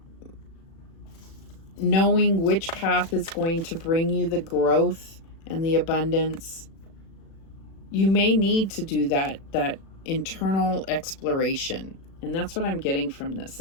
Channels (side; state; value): right; late; 36 ms